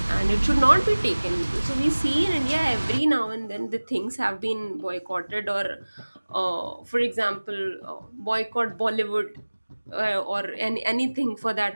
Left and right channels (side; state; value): both; inverted; correlation -1.00